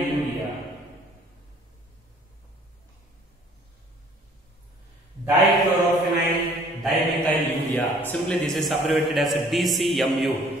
Dichlorophenoyl dimethylurea. Simply this is abbreviated as DCMU.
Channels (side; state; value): both; normal; correlation 0.56